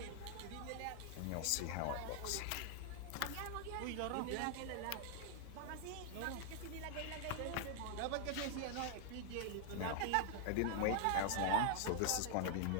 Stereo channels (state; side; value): different; both; correlation 0.00